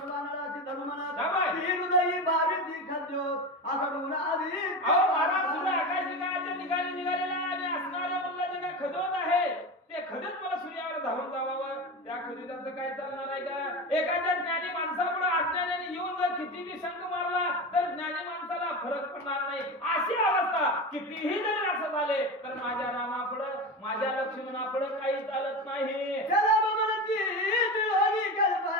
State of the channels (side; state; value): both; normal; correlation 0.23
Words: धरुमनाथ ती हृदयी भावी ती खद्यो आकडून आधी. महाराज सुद्धा आकाशनिकाच्या ठिकाणी निघालेला आणि असणाऱ्या मुलाचे काय खदवत आहे ते खदत मला सूर्यावर धावून जावावं. त्या खदीत सुविधाचं काय चालणार आहे का? एखाद्या ज्ञानी माणसापुढे अज्ञानाने येऊन जर कितीही शंख मारला तर ज्ञानी माणसाला फरक पडणार नाही. अशी अवस्था कितीही जरी असं झाले तर माझ्या रामापुढे माझ्या लक्ष्मणापुढे काही चालत नाही. चला बमनती दिळोनी